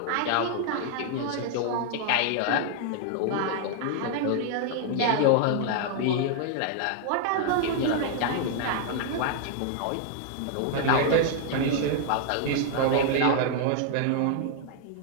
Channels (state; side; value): different; both; correlation 0.00